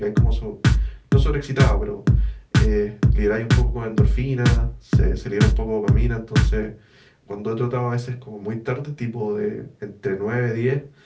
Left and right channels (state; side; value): identical; both; correlation 1.00